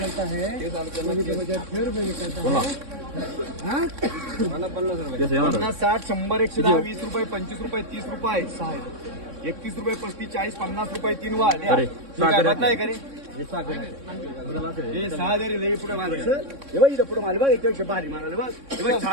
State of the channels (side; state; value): left; late; 3.6 ms